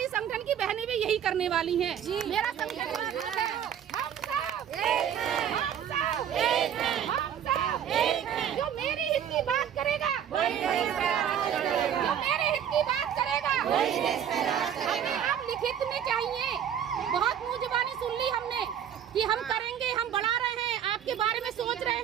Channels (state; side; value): quieter; left; 9.3 dB